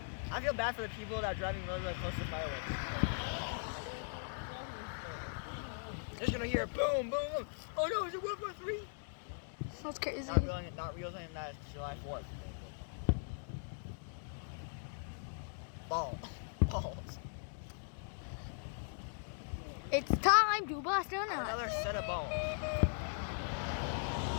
I feel bad for the people that are driving really close to fireworks. They're just gonna hear boom, boom, boom. Oh no, is it World War III? That's crazy. Not realizing that it's July 4th. Balls. It's time to bust a nut. Another set of balls.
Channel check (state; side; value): silent; right; digital silence